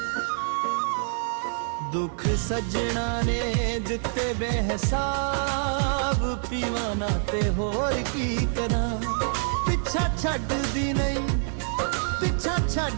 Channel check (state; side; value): silent; left; 61 dB below the other